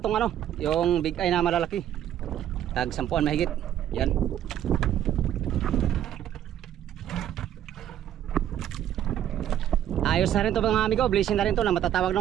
ano, yung big eye na malalaki. Tag 10 mahigit. Yan. Ayos na rin to mga amigo, blessing na rin to na matatawag no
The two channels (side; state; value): left; quieter; 11.0 dB